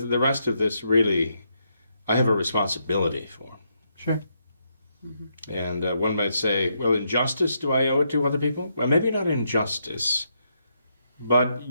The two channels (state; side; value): inverted; both; correlation -0.79